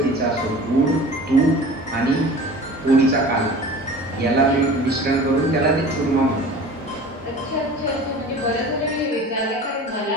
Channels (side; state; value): both; normal; correlation 0.40